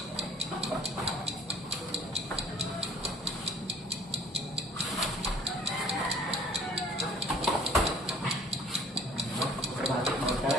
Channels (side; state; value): both; normal; correlation 0.53